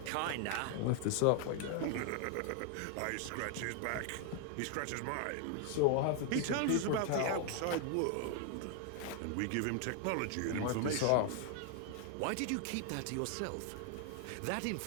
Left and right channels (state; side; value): different; both; correlation 0.00